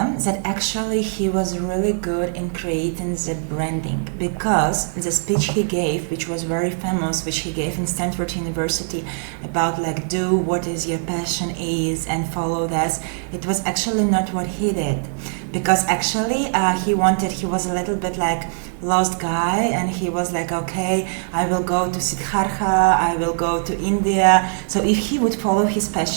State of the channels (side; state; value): left; silent; digital silence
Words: that actually he was really good in creating the branding, because the speech he gave, which was very famous, which he gave in Stanford University, about like do what is your passion is and follow this, it was actually not what he did, because actually he was a little bit like lost guy, and he was like, okay, I will go to Siddhartha, I will go to India. So if he would follow his